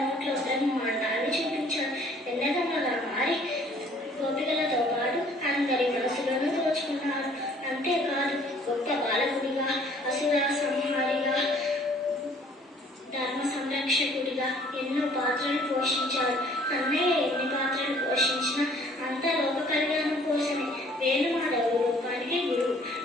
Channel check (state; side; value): normal; both; correlation 0.57